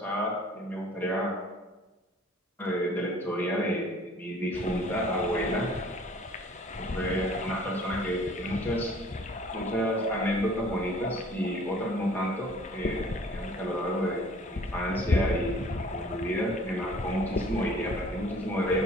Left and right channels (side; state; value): both; normal; correlation 0.52